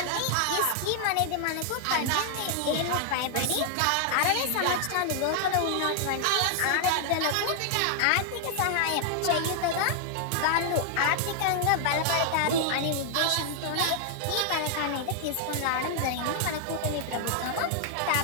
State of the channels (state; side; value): different; both; correlation 0.00